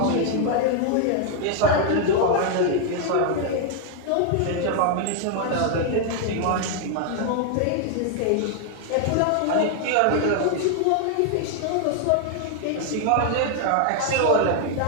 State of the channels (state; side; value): different; both; correlation 0.00